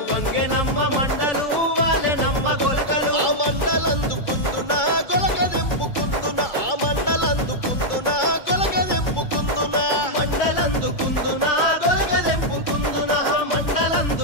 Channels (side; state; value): right; late; 2.3 ms